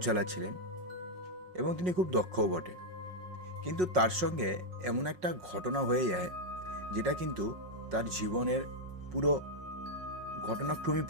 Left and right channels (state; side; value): late; left; 5.5 ms